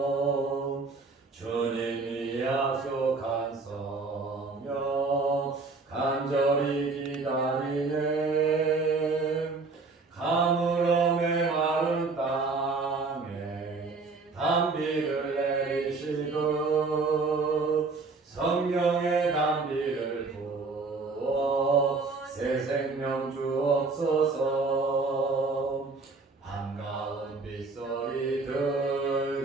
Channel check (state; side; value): quieter; left; 4.0 dB